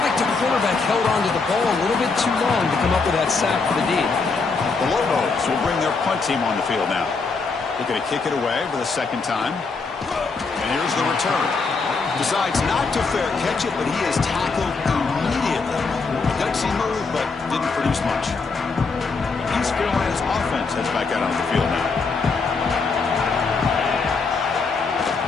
like the quarterback held onto the ball a little bit too long to come up with that sack for the D. The Lobos will bring their punt team on the field now. They're going to kick it away for the second time. And here's the return. Decides not to fair catch it, but he is tackled immediately. Gutsy move, but didn't produce much. East Carolina's offense heads back out on the field now.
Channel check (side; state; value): right; quieter; 4.4 dB